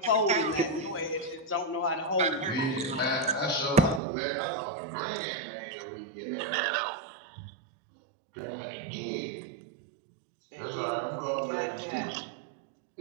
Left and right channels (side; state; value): left; drops out; at 4.0 s